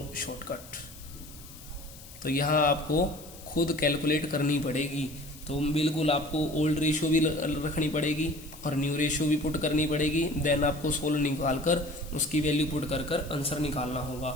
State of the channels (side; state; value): left; noise; hiss, 18 dB below the sound